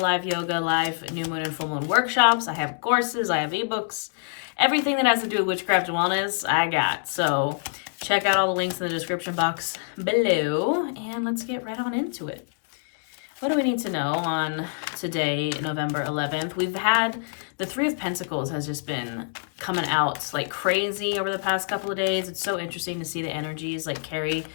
yoga, live new moon and full moon workshops, I have courses, I have ebooks, everything that has to do with witchcraft and wellness, I got. So check out all the links in the description box below, and let's get right on into it. What do we need to know on today, November 11th? We've had the Three of Pentacles has just been coming out like crazy over the past couple of days. It's so interesting to see the energies like carry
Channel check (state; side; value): silent; right; digital silence